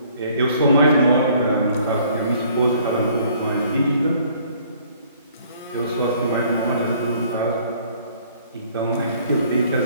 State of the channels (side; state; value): both; inverted; correlation -0.59